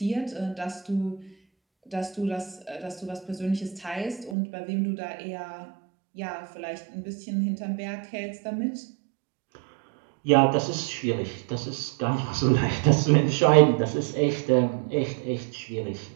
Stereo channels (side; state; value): left; drops out; at 4.4 s